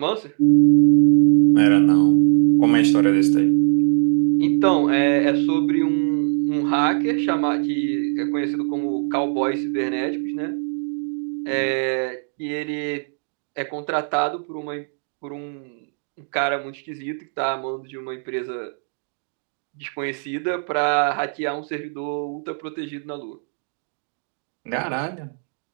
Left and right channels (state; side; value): silent; left; 58 dB below the other